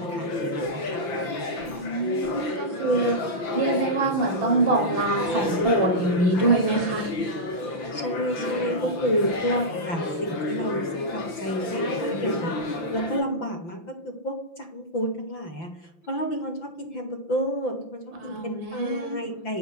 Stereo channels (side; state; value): right; late; 5.9 ms